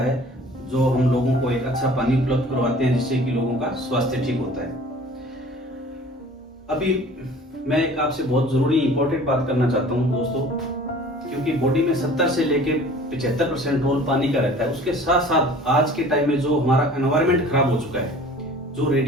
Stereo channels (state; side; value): normal; both; correlation 0.47